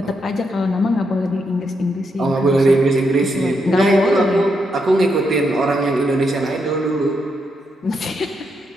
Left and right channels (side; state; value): both; normal; correlation 0.80